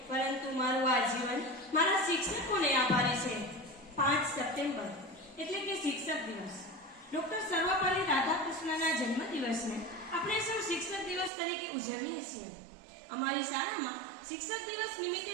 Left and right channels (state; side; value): drops out; left; at 11.3 s